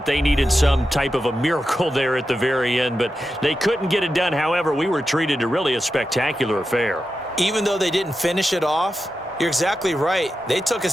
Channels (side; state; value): both; normal; correlation 0.90